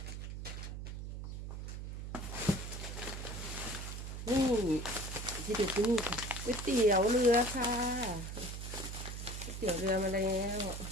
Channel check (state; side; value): noise; right; hum, 7 dB below the sound